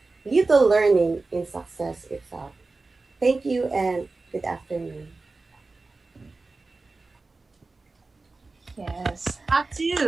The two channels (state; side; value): quieter; left; 3.6 dB